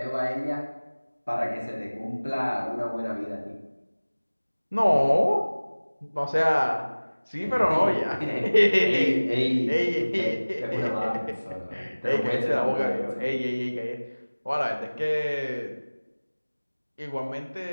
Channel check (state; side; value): inverted; both; correlation -1.00